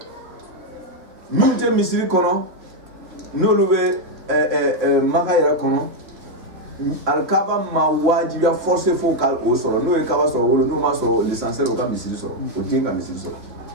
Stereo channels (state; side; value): late; left; 3.0 ms